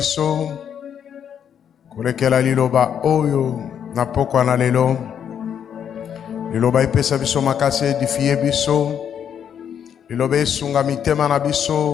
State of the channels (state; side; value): quieter; right; 8.5 dB